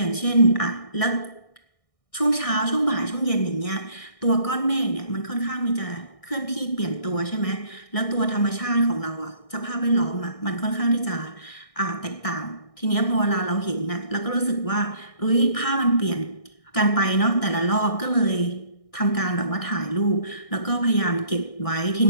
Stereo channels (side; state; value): right; late; 1.6 ms